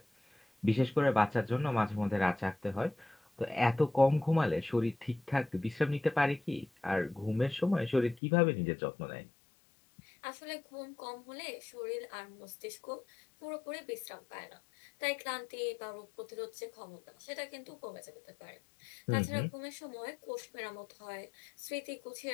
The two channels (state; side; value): drops out; right; at 8.2 s